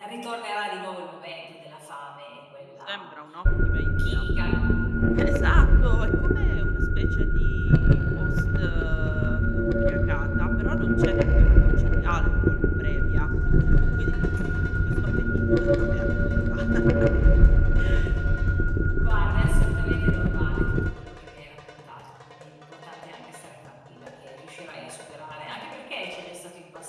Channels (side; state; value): both; identical; correlation 1.00